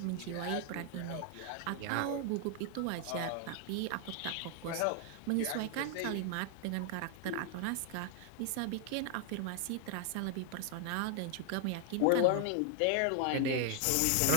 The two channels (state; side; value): different; both; correlation 0.00